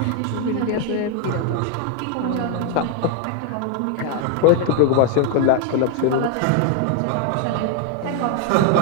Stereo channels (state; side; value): different; both; correlation 0.00